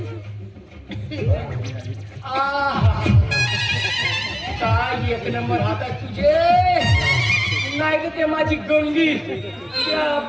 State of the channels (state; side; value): identical; both; correlation 1.00